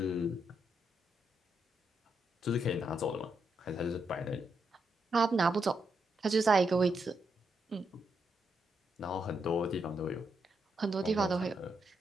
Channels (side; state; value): both; normal; correlation 0.81